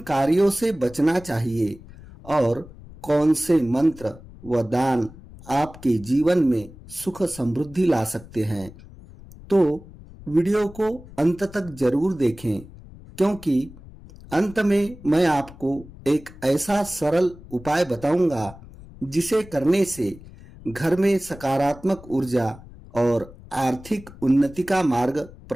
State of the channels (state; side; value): noise; left; rumble, 19 dB below the sound